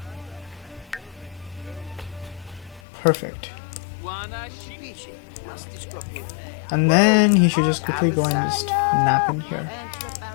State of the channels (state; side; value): drops out; right; at 2.8 s